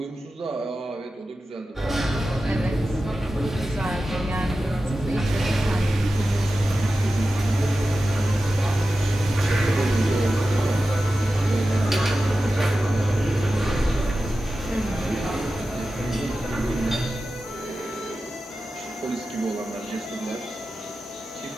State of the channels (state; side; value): normal; both; correlation 0.93